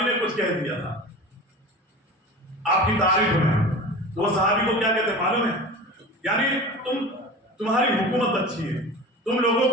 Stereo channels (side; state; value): both; normal; correlation 0.35